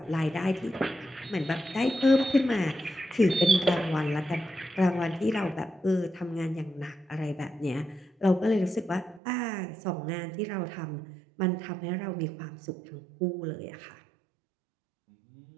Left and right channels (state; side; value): drops out; left; at 9.2 s